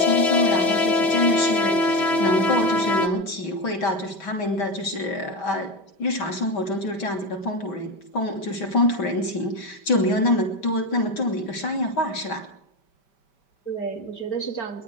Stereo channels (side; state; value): right; late; 5.1 ms